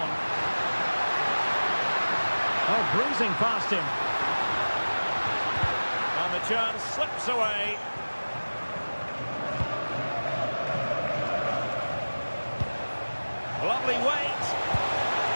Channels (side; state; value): both; inverted; correlation -1.00